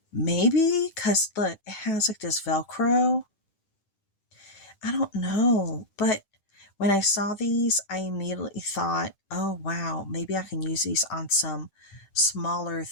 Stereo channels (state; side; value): late; right; 10 ms